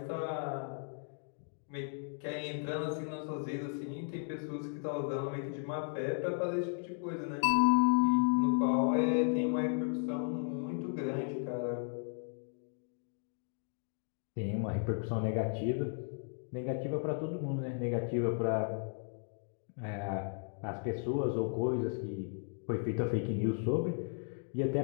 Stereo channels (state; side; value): silent; right; 54 dB below the other